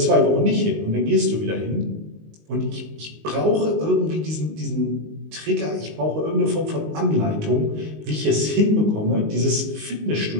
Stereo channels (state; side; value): late; left; 19 ms